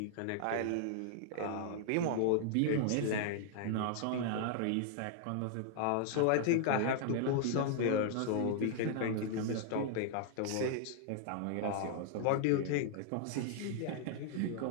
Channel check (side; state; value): both; different; correlation -0.01